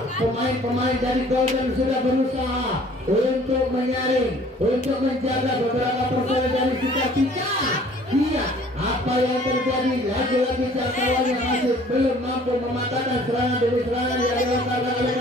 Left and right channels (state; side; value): normal; both; correlation 0.53